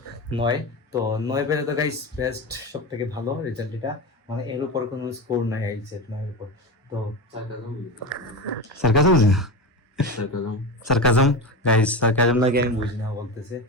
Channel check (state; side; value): normal; both; correlation 0.22